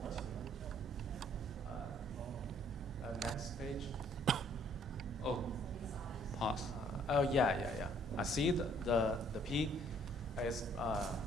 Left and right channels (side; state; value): both; normal; correlation 0.62